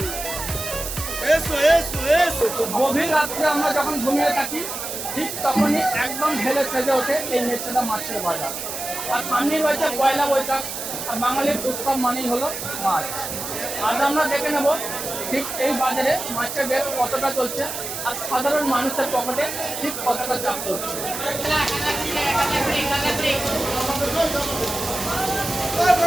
গভীর রাত্রে আমরা যখন ঘুমিয়ে থাকি ঠিক তখনই একদম ঢেলে সেজে ওঠে এই মেচেদা মাছের বাজার। আর সামনে রয়েছে পয়লা বৈশাখ, আর বাঙালির উৎসব মানেই হলো মাছ। আজ আমরা দেখে নেব ঠিক এই বাজারে মাছের রেট কতটা চলছে আর সাধারণ মানুষের পকেটে ঠিক কতটা চাপ করছে।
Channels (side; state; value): right; noise; hiss, 6 dB below the sound